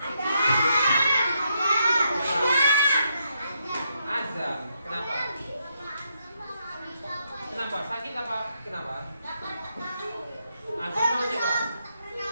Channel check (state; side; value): inverted; both; correlation -0.79